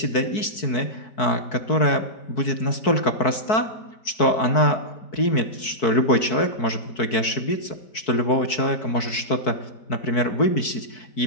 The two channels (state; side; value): late; right; 4.6 ms